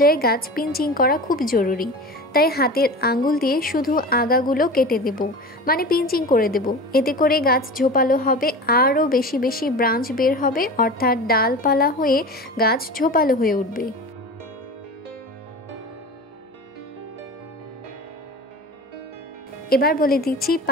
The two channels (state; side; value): normal; both; correlation 0.33